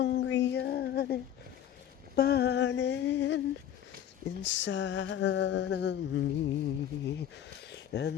yearning burning inside of me,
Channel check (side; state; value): right; quieter; 10.4 dB